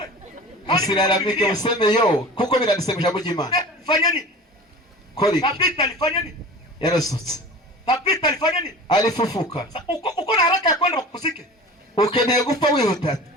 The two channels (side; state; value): both; normal; correlation 0.37